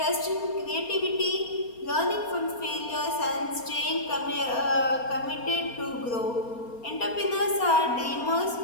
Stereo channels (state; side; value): late; right; 4.3 ms